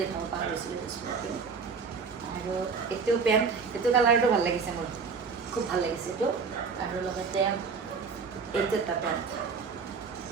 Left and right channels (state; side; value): quieter; left; 5.3 dB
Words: দেখাব পাহৰিছিলোঁ এইটো স্পৰ্টিং আৰু এইটো পেণ্ট এইটো কালাৰটো ভাল লাগিছে মোৰ খুব ভাল লাগিছে এইটো আৰু লগতে এইটো এটা পেণ্ট